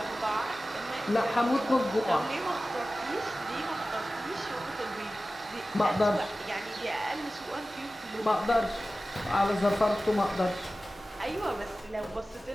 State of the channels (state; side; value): normal; both; correlation 0.96